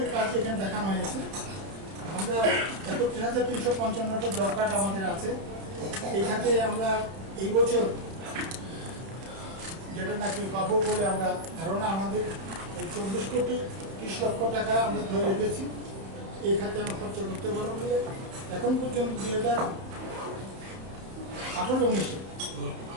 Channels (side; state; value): left; late; 31 ms